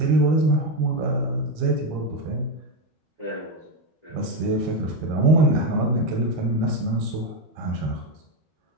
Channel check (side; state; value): left; late; 13 ms